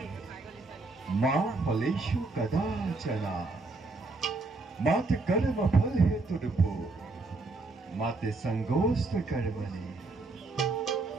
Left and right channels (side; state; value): left; quieter; 3.5 dB